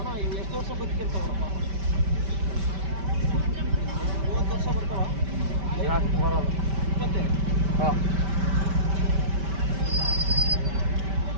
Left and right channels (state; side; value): late; left; 5.1 ms